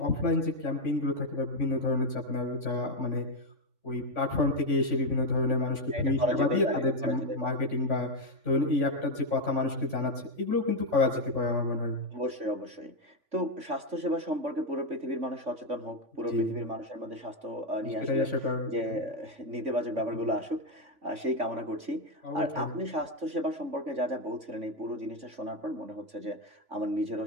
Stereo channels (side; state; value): left; late; 3.5 ms